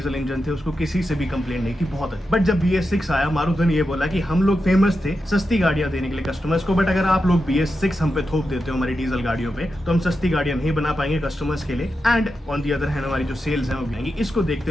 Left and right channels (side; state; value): both; normal; correlation 0.89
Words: इंजन थे उसको किसी से भी कंप्लेंट नहीं थी, बहुत अच्छी। बट जब BS6 आया, मारुति ने ये बोला कि हम लोग फेमस थे सस्ती गाड़ियां देने के लिए कस्टमर्स को, बट अगर आप लोग BS6 हम पे थोप देते हो हमारी डीजल गाड़ियों पे तो हम सस्ती गाड़ियां नहीं बना पाएंगे कस्टमर्स के लिए। And on the other hand हमारी जो सेल्स है वो गिरेंगी। इसको